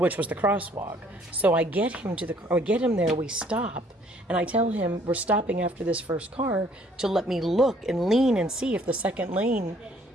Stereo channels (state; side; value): normal; both; correlation 0.61